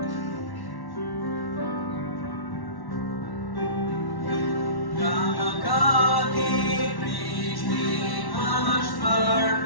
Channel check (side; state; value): right; late; 1.1 ms